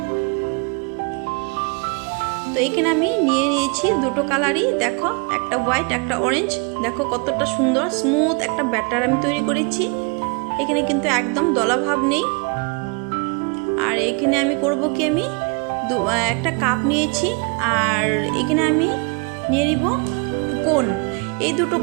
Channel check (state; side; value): quieter; left; 32.7 dB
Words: তো এখানে আমি নিয়ে নিয়েছি দুটো কালারই, দেখো একটা হোয়াইট একটা অরেঞ্জ। দেখো কতটা সুন্দর স্মুথ একটা ব্যাটার আমি তৈরি করেছি। এখানে কিন্তু একদম দলা ভাব নেই। আর এখানে আমি করব কি, আমি একটা কাপ নিয়েছি, আর এখানে আমি নিয়ে নিব কোন। এই দুটো